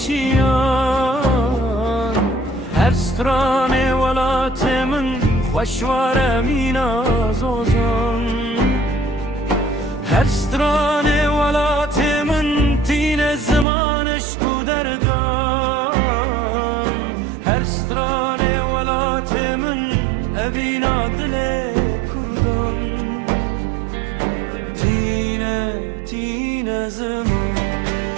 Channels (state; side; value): drops out; left; at 13.7 s